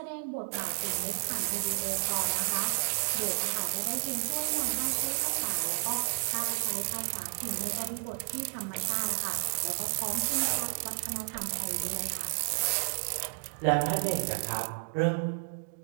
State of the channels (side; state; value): left; silent; digital silence